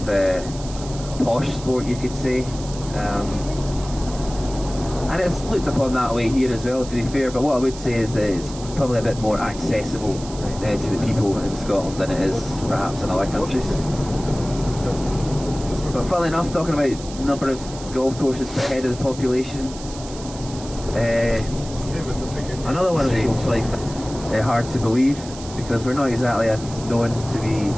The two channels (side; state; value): right; noise; hiss, 15 dB below the sound